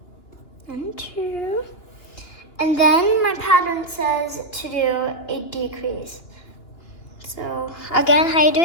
and 2. And then my pattern says to do a decrease. So again, how you do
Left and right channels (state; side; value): late; right; 2.9 ms